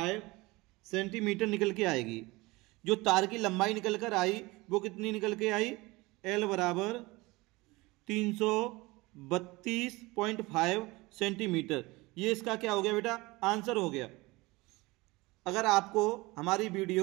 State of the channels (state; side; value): quieter; left; 22.3 dB